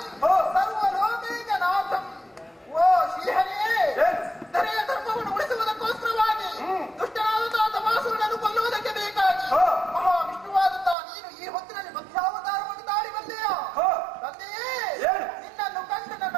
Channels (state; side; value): drops out; left; at 11.0 s